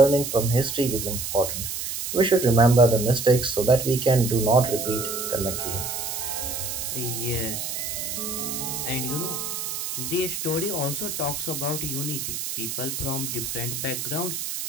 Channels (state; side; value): noise; right; hiss, 4 dB below the sound